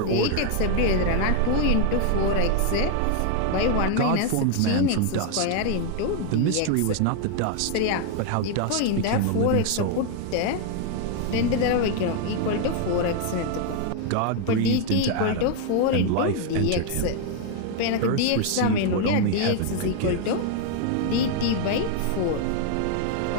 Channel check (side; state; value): both; different; correlation 0.00